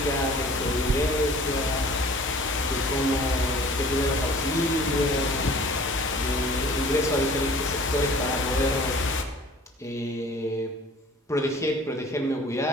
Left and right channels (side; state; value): both; normal; correlation 0.48